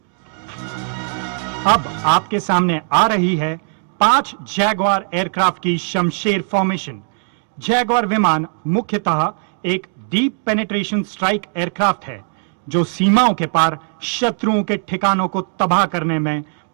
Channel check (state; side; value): silent; left; 67 dB below the other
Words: अब आपके सामने आ रही है 5 Jaguar aircraft की Shamsher formation. Jaguar विमान मुख्यतः एक deep penetration strike aircraft है जो सीमाओं के पार शत्रुओं के ठिकानों को तबाह करने में